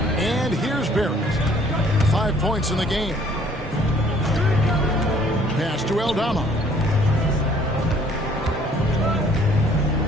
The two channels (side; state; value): both; normal; correlation 0.59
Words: And here's Barrett. 5 points in the game. Pass to Aldama.